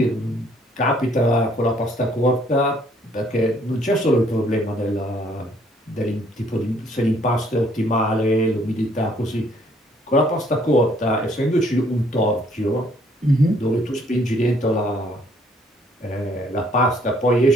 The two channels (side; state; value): both; normal; correlation 0.64